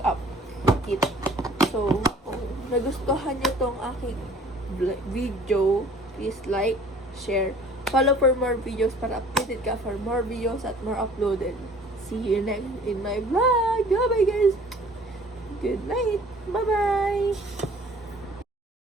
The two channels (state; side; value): normal; both; correlation 0.51